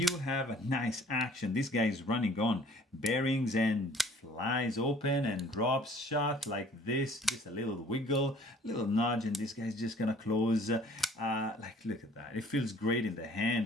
have a nice action. This guy is running on bearings and flies open and drops shut like this. Just a little wiggle, little nudge, and this guy's just gonna close. Like, look at that. It feels great in the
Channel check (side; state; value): both; normal; correlation 0.54